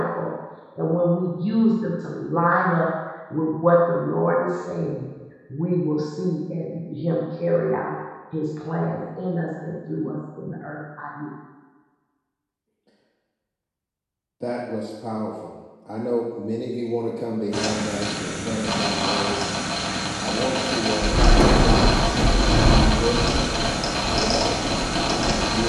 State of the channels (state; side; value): identical; both; correlation 1.00